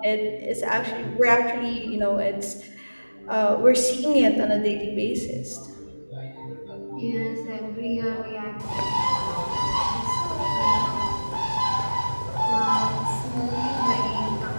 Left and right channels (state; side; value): inverted; both; correlation -1.00